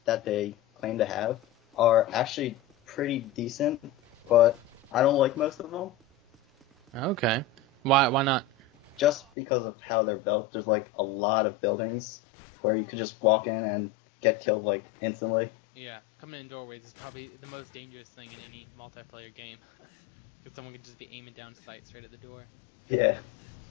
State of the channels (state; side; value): drops out; right; at 9.2 s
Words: that they claim to have are actually pretty decent, but I don't like most of them. Okay. Why not? Just because of how they're built. There's like a lot of buildings where you could just walk in and get killed like instantly. Yeah, coming in doorways is probably the most dangerous thing in any multiplayer game. Because someone could just be aiming down sight straight at the door. Yeah.